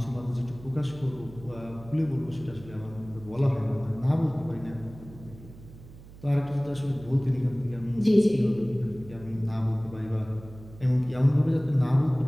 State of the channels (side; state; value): right; noise; hum, 18 dB below the sound